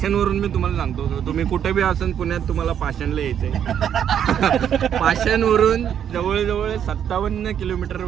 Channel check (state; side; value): quieter; left; 9.1 dB